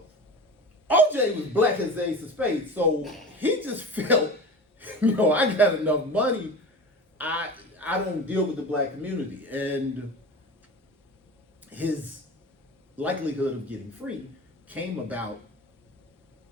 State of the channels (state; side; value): normal; both; correlation 0.33